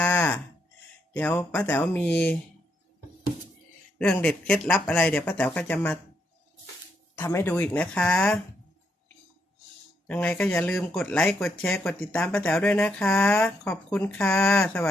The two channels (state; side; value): normal; both; correlation 0.77